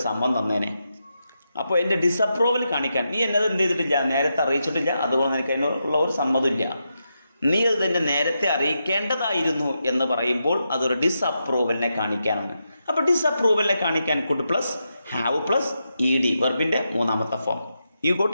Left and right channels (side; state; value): both; inverted; correlation -0.85